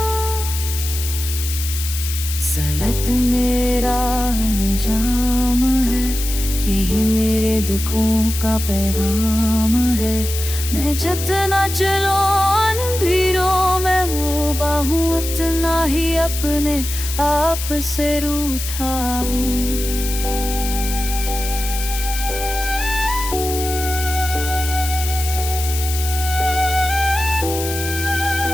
सलत मेरा अंजाम है, यही मेरे दुखों का पैगाम है। मैं जितना चलो अंधेरों में वो बाहूं, उतना ही अपने आप से रूठा हूँ।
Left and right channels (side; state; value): left; noise; hiss, 7 dB below the sound